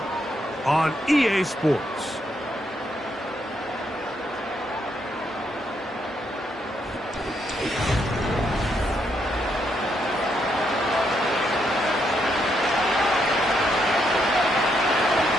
on EA Sports.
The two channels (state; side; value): normal; both; correlation 0.77